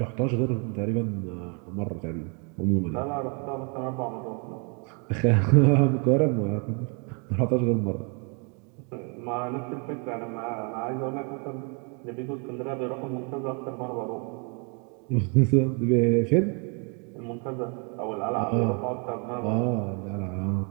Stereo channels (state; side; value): quieter; left; 36.2 dB